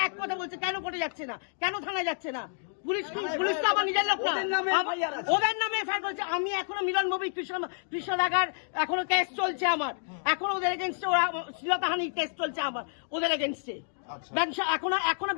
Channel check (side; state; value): right; silent; digital silence